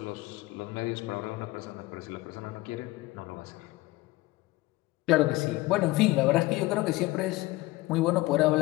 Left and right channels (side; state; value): right; quieter; 19.6 dB